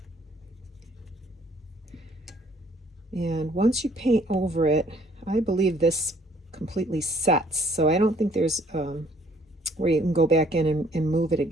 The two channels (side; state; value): both; normal; correlation 0.61